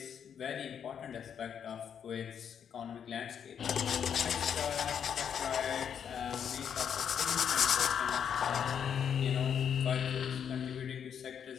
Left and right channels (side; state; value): right; quieter; 8.0 dB